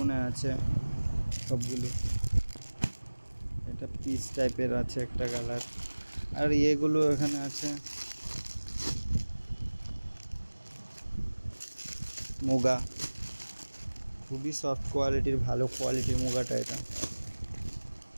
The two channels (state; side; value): inverted; both; correlation -1.00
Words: আছে সবগুলো। এটা পিস টাইপের আছে একটা কালার। আর এগুলো এখানে আছে মুগা, খুবই সফট কোয়ালিটির, ভালো কোয়ালিটির মুগাটা। এটা